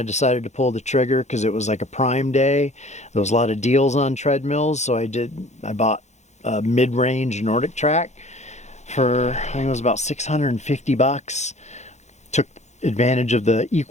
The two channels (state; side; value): late; right; 0.33 ms